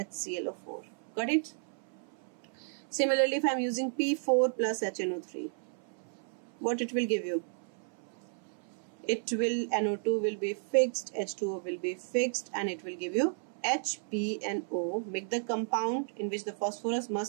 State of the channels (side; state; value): left; silent; 56 dB below the other